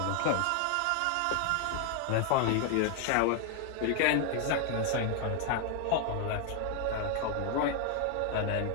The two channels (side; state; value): both; different; correlation 0.00